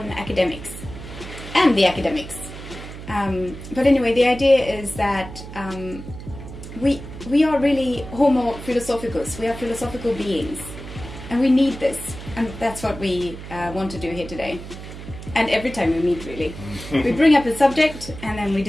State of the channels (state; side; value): noise; right; hum, 12 dB below the sound